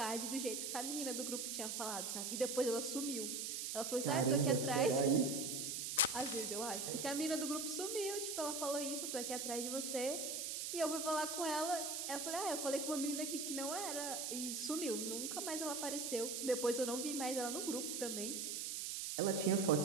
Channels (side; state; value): right; noise; hiss, 3 dB below the sound